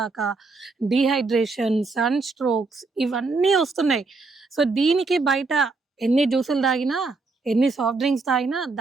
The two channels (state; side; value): quieter; left; 3.9 dB